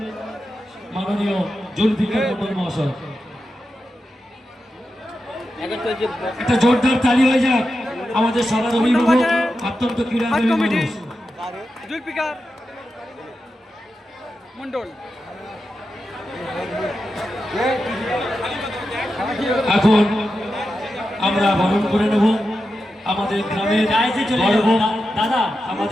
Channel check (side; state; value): both; normal; correlation 0.89